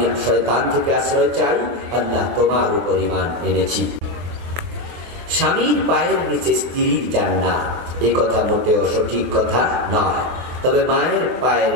শয়তান থেকে আশ্রয় চাই, আল্লাহ তোমার উপর ঈমান এনেছি। স্বামীর পায়ের নিচে স্ত্রীর জান্নাত, এই কথা মোটেও সঠিক কথা নয়। তবে মায়ের পায়ের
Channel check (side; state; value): left; late; 24 ms